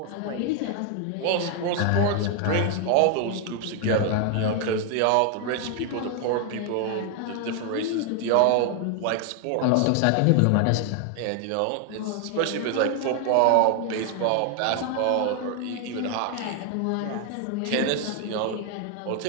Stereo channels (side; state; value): both; different; correlation 0.00